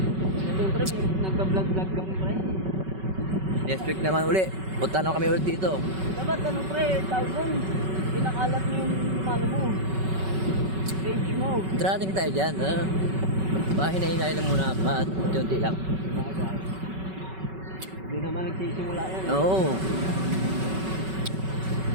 Siyempre, nagka-vlog-vlog kami, pre. Next week naman uli. Punta na kami ulit dito. Dapat ano, pre, tawag doon. Pinakalat mo yung ano mo. Page mo. Trating tayo dyan. Hinay-hinay lang muna at unti-unti lang. Hindi naman nagsisimula yan. Oo.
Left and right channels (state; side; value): late; left; 5.3 ms